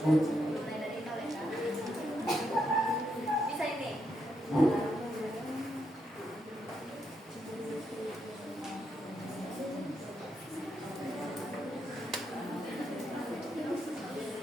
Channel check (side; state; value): both; normal; correlation 0.80